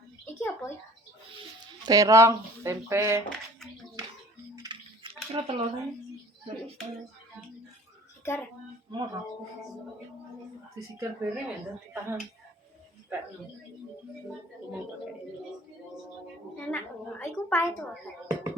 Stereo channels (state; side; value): normal; both; correlation 0.47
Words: Iki apa ya? Terong, tempe. Kira telurnya. Sigar. Mau disigar bareng ya, ditahan. Enak. Iku pahit to.